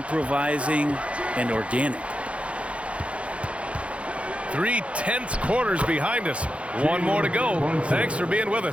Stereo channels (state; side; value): late; left; 0.062 ms